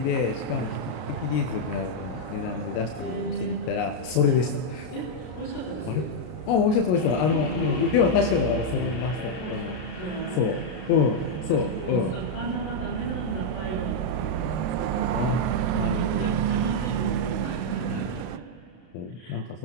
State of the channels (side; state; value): right; late; 33 ms